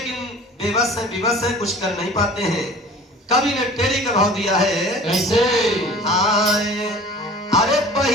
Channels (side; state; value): both; normal; correlation 0.44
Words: बेबस है, विवश है, कुछ कर नहीं पाते हैं। कवि ने टेरी का भाव दिया है कैसे? आए अरे